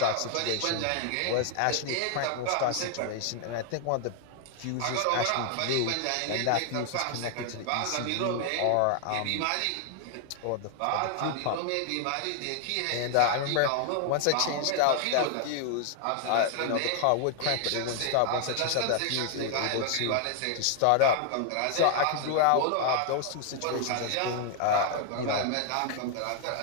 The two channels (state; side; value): different; both; correlation 0.00